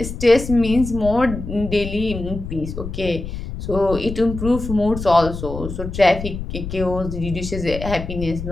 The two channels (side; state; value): left; noise; rumble, 8 dB below the sound